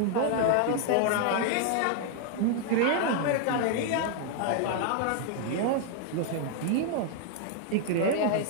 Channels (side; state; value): both; different; correlation 0.00